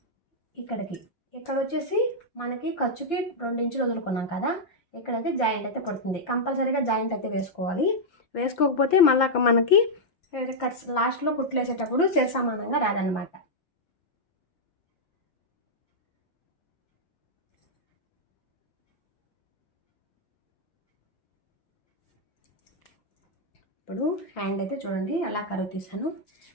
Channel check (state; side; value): late; right; 5.9 ms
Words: ఇక్కడ వచ్చేసి మనకి ఖర్చుకి 2 ఇంచులు వదులుకున్నాం కదా, ఇక్కడైతే జాయింట్ అయితే పడుతుంది. కంపల్సరీగా జాయింట్ అయితే వేసుకోవాలి. వేసుకోకపోతే మళ్ళీ మనకి లాస్ట్లో కుట్లు వేసేటప్పుడు సమానంగా రాదనమాట. ఇప్పుడు హ్యాండ్ అయితే చూడండి అలా కరువు తీసాను.